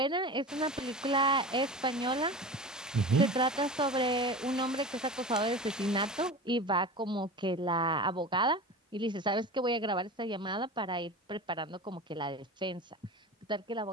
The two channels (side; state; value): both; normal; correlation 0.31